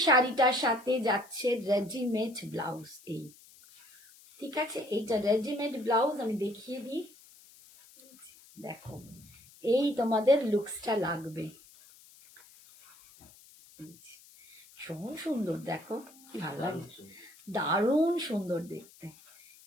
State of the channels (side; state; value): left; noise; hiss, 24 dB below the sound